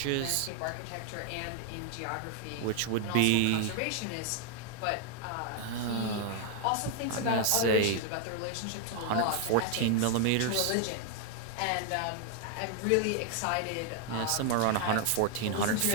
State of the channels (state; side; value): different; both; correlation 0.00